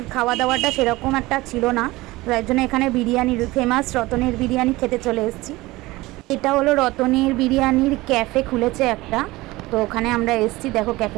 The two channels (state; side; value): quieter; left; 19.9 dB